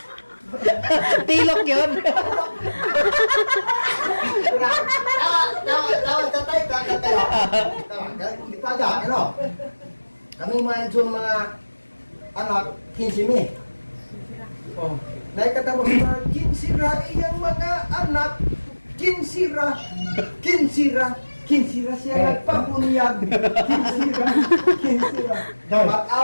Tilok yun. Tawa, tatay, kakatay. Tawa, di pa dyan, ano? Kaming mga anak, 15 mi. Oh, naikatapos na 15 ra iyang mga anak. 15 ra siya nagpapunyag. 15 ra.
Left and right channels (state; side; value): inverted; both; correlation -1.00